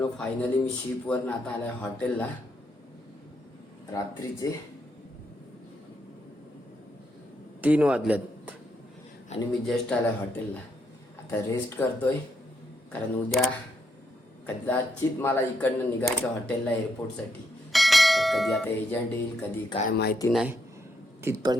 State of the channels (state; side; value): normal; both; correlation 0.78